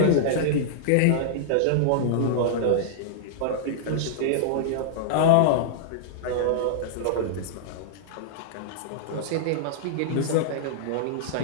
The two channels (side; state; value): both; different; correlation -0.02